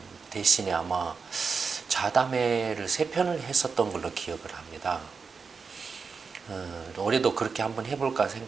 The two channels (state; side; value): quieter; left; 5.2 dB